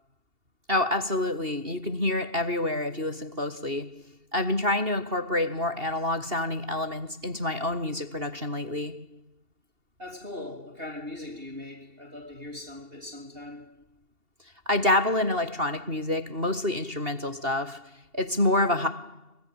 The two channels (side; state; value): left; late; 2.8 ms